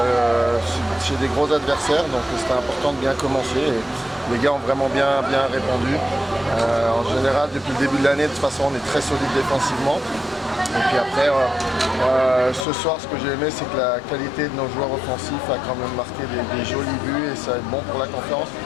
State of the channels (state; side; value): drops out; right; at 12.7 s